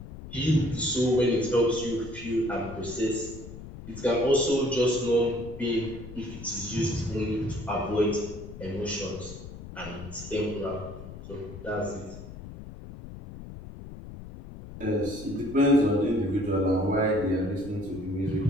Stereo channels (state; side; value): noise; left; rumble, 13 dB below the sound